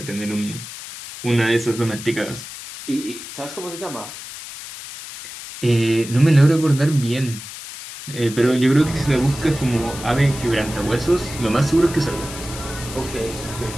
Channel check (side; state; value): left; noise; hiss, 12 dB below the sound